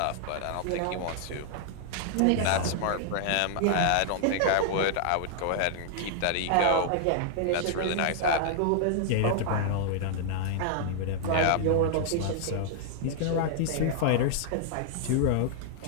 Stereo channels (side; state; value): both; different; correlation -0.01